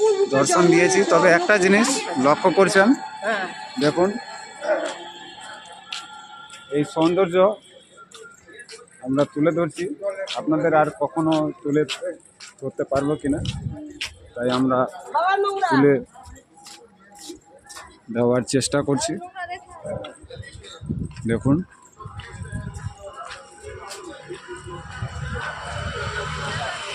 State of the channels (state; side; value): identical; both; correlation 1.00